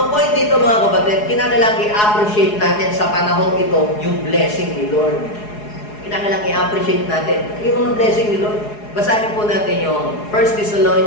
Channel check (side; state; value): right; late; 4.8 ms